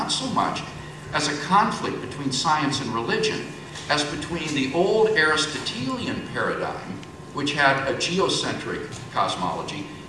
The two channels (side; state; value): both; identical; correlation 1.00